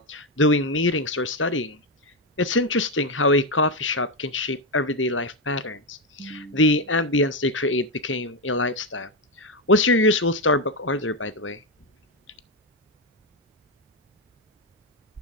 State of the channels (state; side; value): normal; both; correlation 0.07